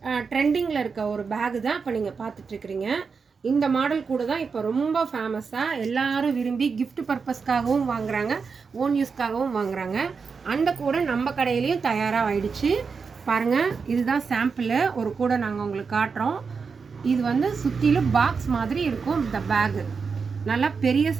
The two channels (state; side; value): quieter; left; 5.3 dB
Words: ட்ரெண்டிங்கில் இருக்க ஒரு பேகு தான் இப்போ நீங்கள் பார்த்துட்ருக்குறீங்க. இந்த மாடல் கூட தான் இப்போ ரொம்ப ஃபேமஸாக எல்லாரும் விரும்பி கிஃப்ட் பர்பஸ்க்காகவும் வாங்குறாங்க, ஓன் யூஸ்க்காகவும் வாங்குறாங்க. அந்த கூட நம்ம கடையிலையும் தயாராக ஆயிடுச்சு. பாருங்கள், இதுதான் சாம்பிள். ஒரு கூட நாங்கள் உங்களுக்கு காட்டுறோம். இது வந்து சுற்றிலும் பாக்ஸ் மாதிரி இருக்கும். இந்த பேகு நல்லா பெரிய